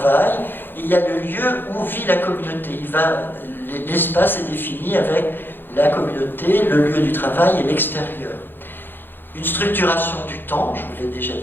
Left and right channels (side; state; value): right; late; 0.098 ms